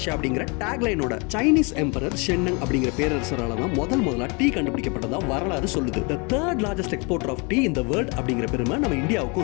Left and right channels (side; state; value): right; quieter; 31.1 dB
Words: அப்படிங்கிற டேக்லைனோட சைனீஸ் எம்பரர் ஷென்னங் அப்படிங்கிற பேரரசரால தான் முதல்ல டீ கண்டுபிடிக்கப்பட்டதா வரலாறு சொல்லுது. The third largest exporter of tea in the world அப்படிங்கிற பெருமை நம்ம